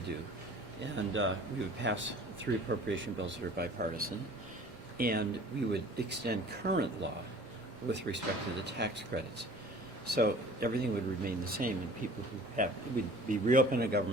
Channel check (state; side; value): normal; both; correlation 0.47